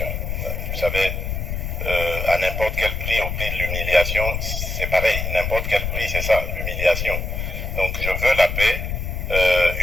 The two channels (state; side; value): noise; left; rumble, 3 dB below the sound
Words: Vous savez, à n'importe quel prix, au prix de l'humiliation, c'est pareil, n'importe quel prix, c'est ça, l'humiliation. Donc je veux la paix,